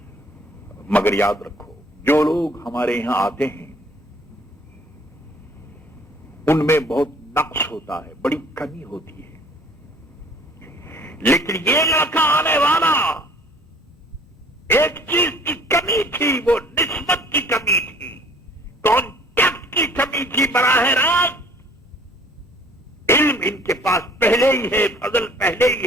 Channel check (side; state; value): both; normal; correlation 0.54